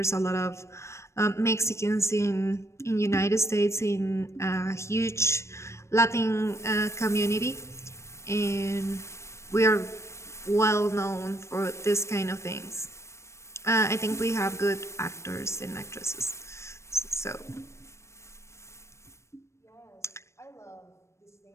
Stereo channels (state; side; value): late; right; 0.13 ms